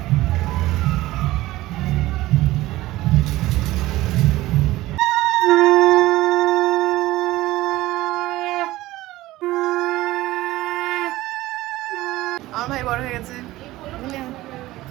আমার ভাই বড় হয়ে গেছে।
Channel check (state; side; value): quieter; left; 17.3 dB